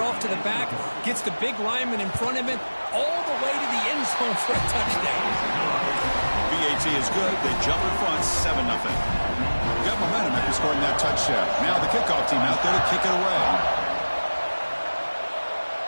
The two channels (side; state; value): both; inverted; correlation -1.00